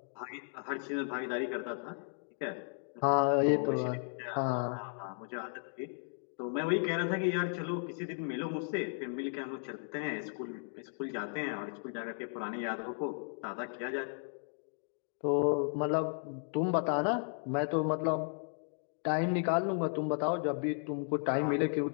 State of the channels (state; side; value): silent; right; 54 dB below the other